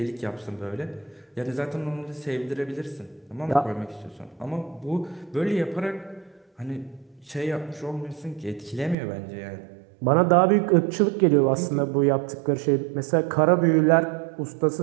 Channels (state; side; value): drops out; left; at 9.0 s